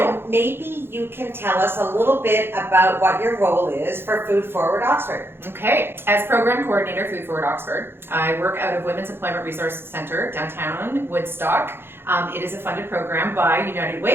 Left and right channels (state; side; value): late; left; 0.11 ms